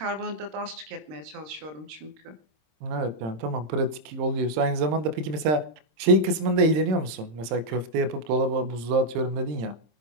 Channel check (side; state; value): left; late; 26 ms